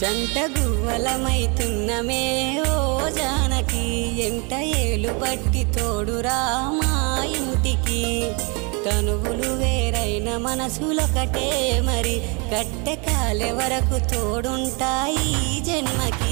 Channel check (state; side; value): quieter; left; 31.8 dB